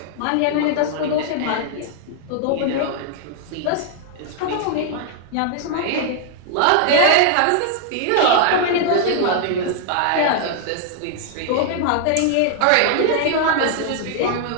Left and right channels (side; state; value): both; different; correlation 0.00